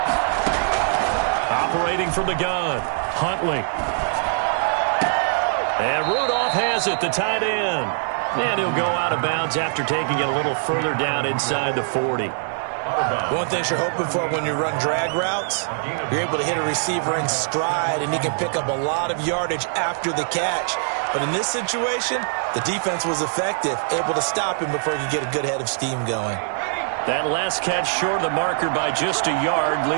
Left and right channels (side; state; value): left; silent; 61 dB below the other